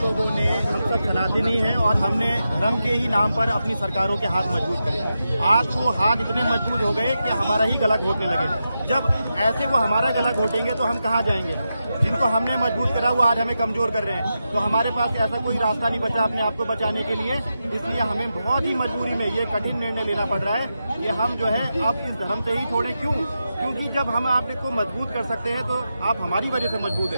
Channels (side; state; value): both; inverted; correlation -0.88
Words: ने, हम सब सनातनी हैं और हमने धर्म के ही नाम पर अपनी सरकारों के हाथ मजबूत करे। आज वो हाथ इतने मजबूत हो गए कि हमारा ही गला घोटने लगे। जब ऐसे वो हमारा गला घोटेंगे तो हम कहाँ जाएंगे? जिनको हमने मजबूत करा वो आज हमें कमजोर कर रहे हैं, तो हमारे पास ऐसा कोई रास्ता नहीं बचा अपने आप को बचाने के लिए। इसलिए हमें बहुत ही मजबूरी में ये कठिन निर्णय लेना पड़ रहा है कि हम जो है अब इस धर्म से ही छोड़े। क्यों? क्योंकि जब हम आप को मजबूत कर सकते हैं तो आप हमारी वजह से मजबूत